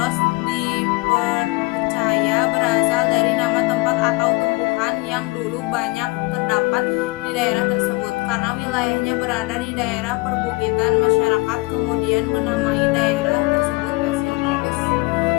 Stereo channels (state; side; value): quieter; right; 26.0 dB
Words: dipercaya berasal dari nama tempat atau tumbuhan yang dulu banyak terdapat di daerah tersebut. Karena wilayahnya berada di daerah perbukitan, masyarakat kemudian menamai daerah tersebut Pasir Baros.